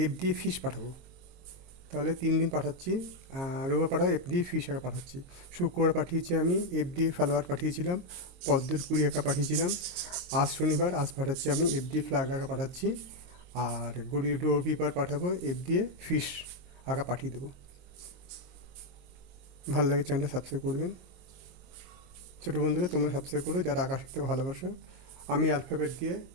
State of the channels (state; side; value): late; left; 22 ms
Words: এফ দিয়ে ফিশ পাঠাবো। তাহলে 3 দিন পাঠাচ্ছি। রবিবার পাঠাবো এফ দিয়ে ফিশ আঁকা পাঠাচ্ছি। শুক্রবার পাঠিয়েছি আমি এফ দিয়ে ফ্লাওয়ার পাঠিয়েছিলাম, পদ্মের কুড়ি আঁকা পাঠিয়েছিলাম। আজ শনিবার, আজ পাঠাচ্ছি আমি এফ দিয়ে ফ্ল্যাগ আঁকা পাঠাচ্ছি। আর রবিবার পাঠাবো এফ দিয়ে ফিশ আঁকা পাঠিয়ে দেবো। ভালো লাগে চ্যানেলটা সাবস্ক্রাইব করবেন। ছোটো বন্ধুরা তোমরা সাবস্ক্রাইব করো যারা আঁকা শিখতে ভালোবাসো। আমি অ্যালফাবেট দিয়ে